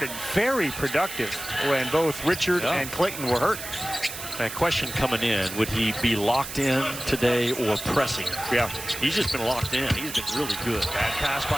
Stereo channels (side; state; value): right; noise; hiss, 9 dB below the sound